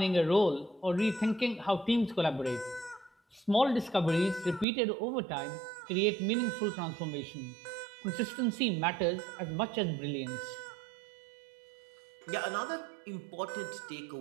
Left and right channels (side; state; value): left; drops out; at 4.7 s